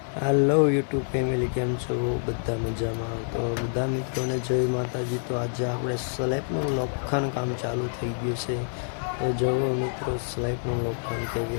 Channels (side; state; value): right; silent; 60 dB below the other